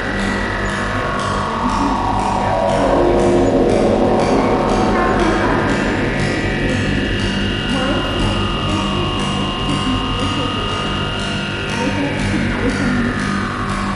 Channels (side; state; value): both; identical; correlation 1.00